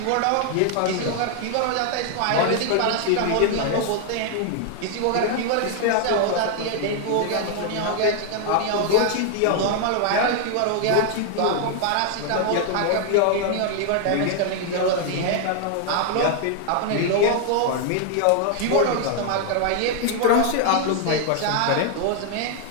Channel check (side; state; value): both; different; correlation 0.00